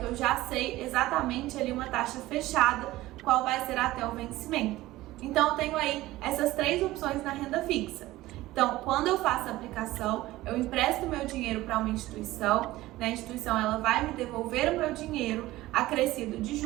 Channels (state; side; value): quieter; left; 17.3 dB